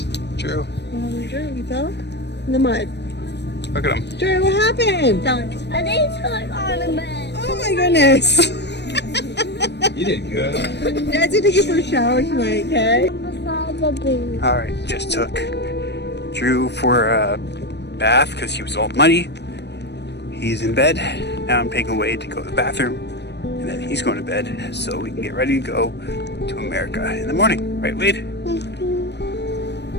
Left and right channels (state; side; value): late; right; 0.50 ms